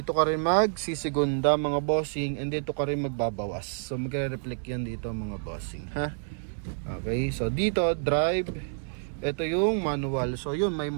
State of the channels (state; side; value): silent; left; digital silence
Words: ka rin magsisigunda mga bossing, and dito ka rin magbabawas. So magre-reflect yan dito mga bossing ha. Okay, so dito drive, ito yung manual. So yun, may